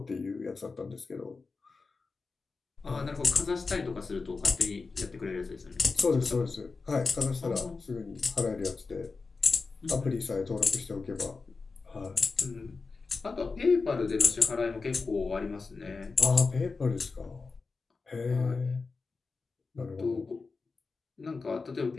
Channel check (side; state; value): right; quieter; 4.3 dB